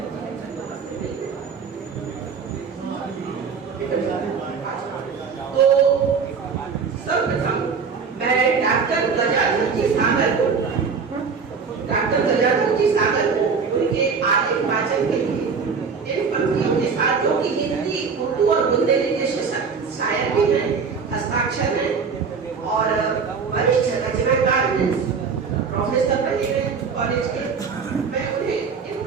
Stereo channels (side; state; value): left; quieter; 5.6 dB